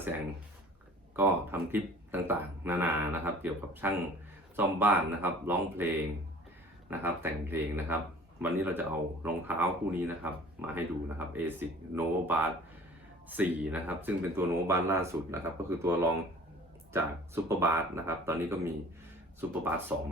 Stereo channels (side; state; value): both; normal; correlation 0.48